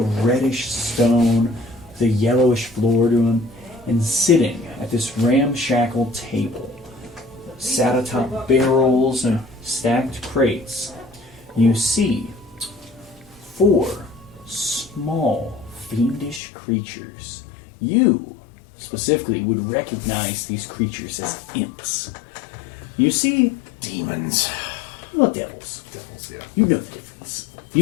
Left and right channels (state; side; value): drops out; right; at 16.4 s